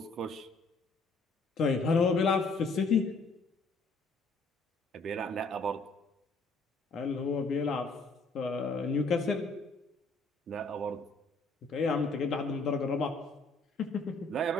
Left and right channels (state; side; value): quieter; right; 3.4 dB